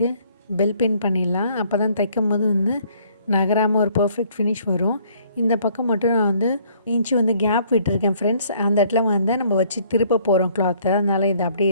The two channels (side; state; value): both; inverted; correlation -0.62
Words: பெல் பின் பண்ணிடலாம். அப்போ தான் தைக்கும் போது வந்து நகராமல் ஒரு பர்ஃபெக்ட் ஃபினிஷ் வரும். இந்த பக்கம் மட்டும் நான் வந்து இன்ச்சு வந்து கேப் விட்டுருக்கேன் ஃப்ரெண்ட்ஸ். அந்த இடத்துல வந்து நம்ம வச்சு திருப்ப போகிறோம் கிளாத்தை, அதனால் இது அப்படியே